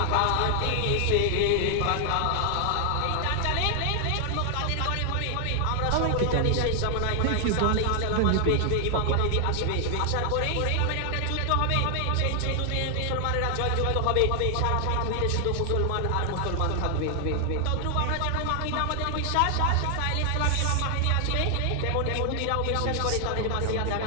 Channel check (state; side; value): different; both; correlation 0.00